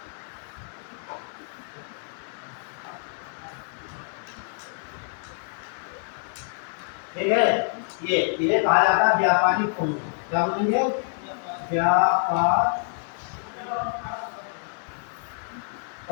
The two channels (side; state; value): right; silent; 60 dB below the other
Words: ठीक है। ये कहा जाता है व्यापारी कोण, क्या बोलेंगे, व्यापार